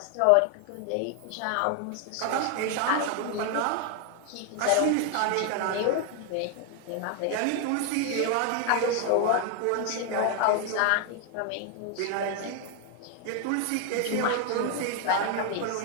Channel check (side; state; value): both; different; correlation 0.01